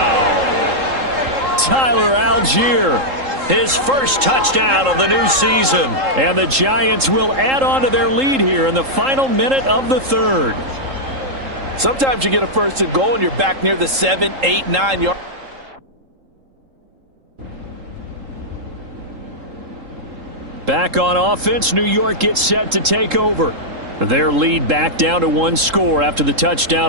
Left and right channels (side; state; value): left; late; 3.7 ms